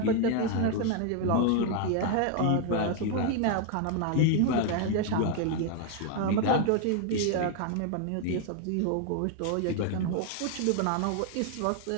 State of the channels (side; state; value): both; different; correlation 0.00